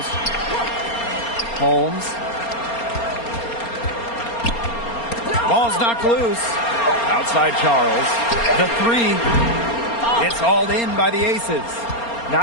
Holmes. Ball's knocked loose. Outside Charles. The 3. It's hauled in by the Aces.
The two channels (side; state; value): right; late; 4.3 ms